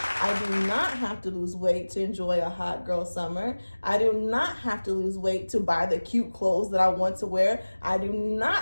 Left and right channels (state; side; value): inverted; both; correlation -1.00